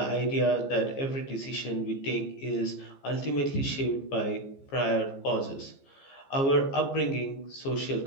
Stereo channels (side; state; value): right; late; 15 ms